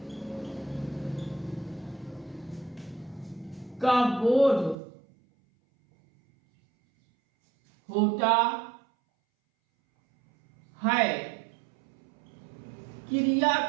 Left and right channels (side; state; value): left; drops out; at 4.8 s